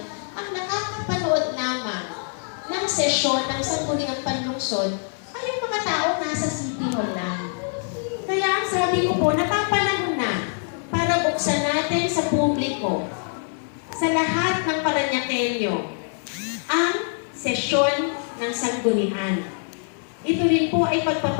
ang nakakapanood lamang ng sesyon ng Sangguniang Panlungsod ay yung mga tao nasa City Hall lang. Kaya ang sabi ko po, napapanahon na para buksan natin sa publiko, sa lahat ng Parañaqueño, ang sesyon ng Sanggunian. Ito rin po ay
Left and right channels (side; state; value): right; silent; 62 dB below the other